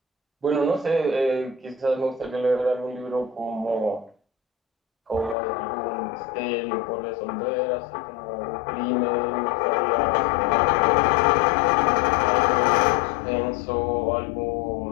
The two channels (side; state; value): right; drops out; at 5.4 s